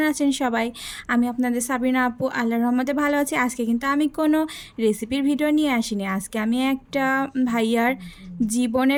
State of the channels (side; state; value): both; identical; correlation 1.00